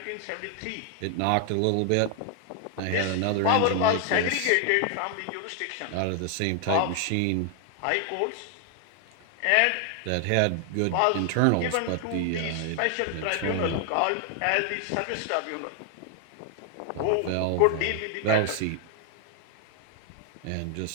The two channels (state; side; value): different; both; correlation 0.00